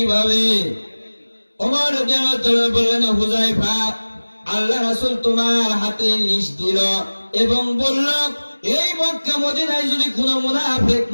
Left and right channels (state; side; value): inverted; both; correlation -1.00